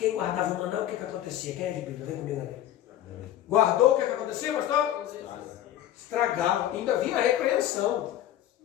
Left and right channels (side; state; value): right; quieter; 12.3 dB